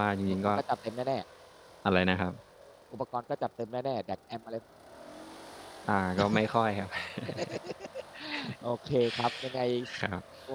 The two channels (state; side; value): identical; both; correlation 1.00